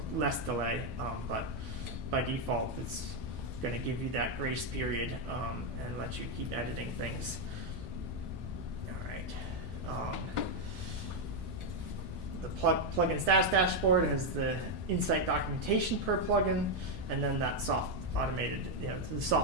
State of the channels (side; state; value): left; late; 9.0 ms